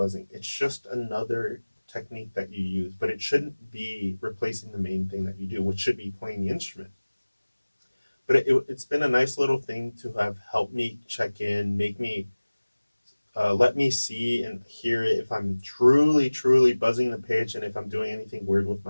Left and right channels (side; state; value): both; inverted; correlation -1.00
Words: It's just another technique that you use, but it shouldn't be replacing the main thing that you do, which should be playing the instrument. But it's been a nice little thing to have helped me check in, make me let me see and hear it if I'm truly, truly buzzing the pitch and if I'm doing anything weird with